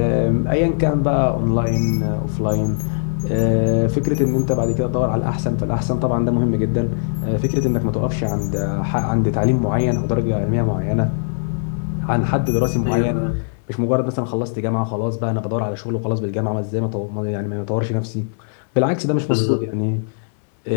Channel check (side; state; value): right; silent; 60 dB below the other